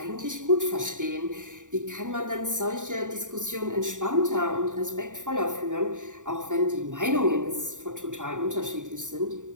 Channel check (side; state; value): left; late; 0.86 ms